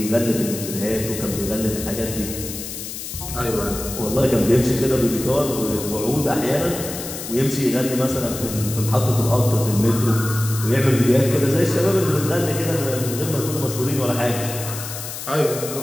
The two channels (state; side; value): noise; left; hiss, 8 dB below the sound